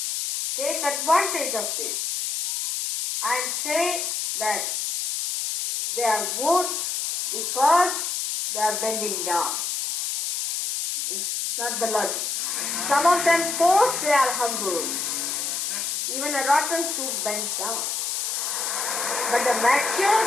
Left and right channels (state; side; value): noise; left; hiss, 1 dB below the sound